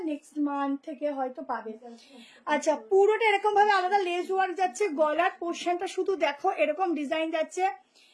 নেক্সট মান্থ থেকে হয়তো পাবে। আচ্ছা, পুরোটা এরকম ভাবে আলাদা লেস ওয়ার্ক যাচ্ছে, গলার পোর্শনটা শুধু দেখো এরকম ডিজাইন যাচ্ছে।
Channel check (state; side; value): identical; both; correlation 1.00